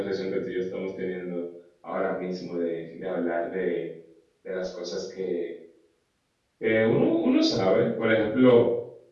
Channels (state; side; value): identical; both; correlation 1.00